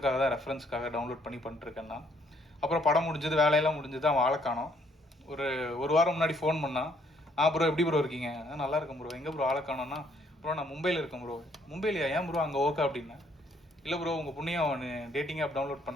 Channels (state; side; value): normal; both; correlation 0.67